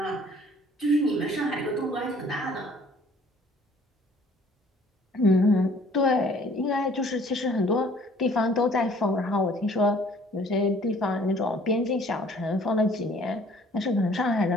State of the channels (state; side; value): normal; both; correlation 0.56